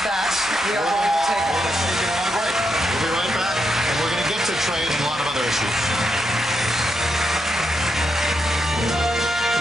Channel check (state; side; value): normal; both; correlation 0.82